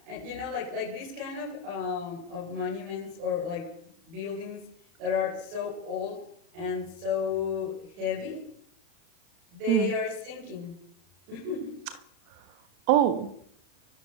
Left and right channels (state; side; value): late; left; 35 ms